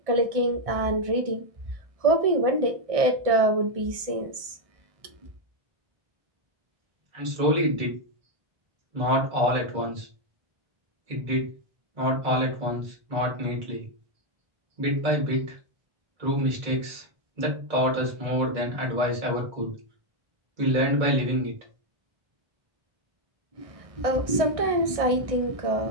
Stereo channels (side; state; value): left; late; 1.6 ms